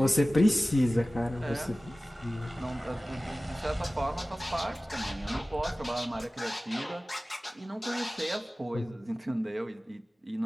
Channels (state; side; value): normal; both; correlation 0.97